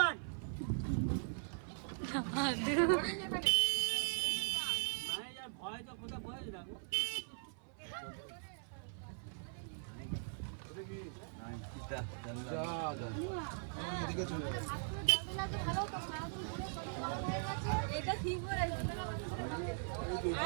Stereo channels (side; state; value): left; silent; 51 dB below the other